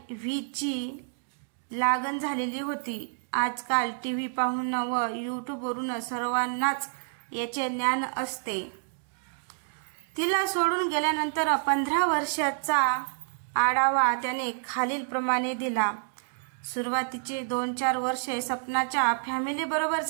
ची लागण झालेली होती. आजकाल TV पाहून व यूट्यूबवरून सर्वांनाच याचे ज्ञान असते. तिला सोडून गेल्यानंतर 15 वर्षाचा आढावा त्याने खालील प्रमाणे दिला. सुरुवातीचे 2-4 वर्षे सपनाच्या फॅमिली बरोबर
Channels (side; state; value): left; silent; digital silence